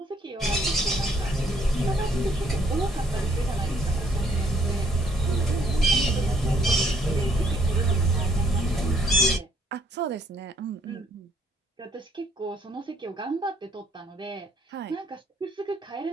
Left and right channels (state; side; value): normal; both; correlation 0.66